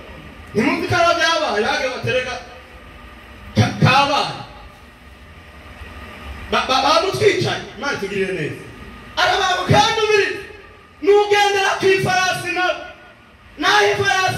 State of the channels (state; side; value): identical; both; correlation 1.00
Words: ntimuzi ko arabyo yabaye bage batereka kabaye bamutwicaye Imana tugirire neza arabantu kandi ubiri n'ugendera kw'ifarasi naho